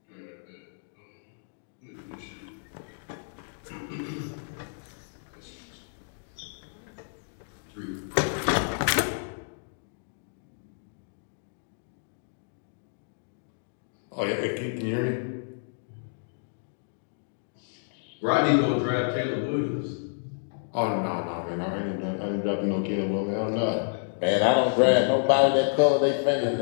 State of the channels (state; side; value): silent; right; digital silence